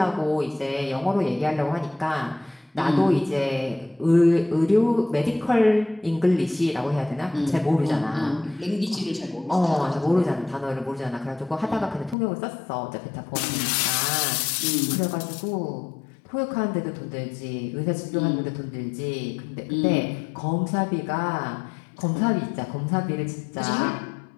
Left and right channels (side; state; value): right; drops out; at 12.2 s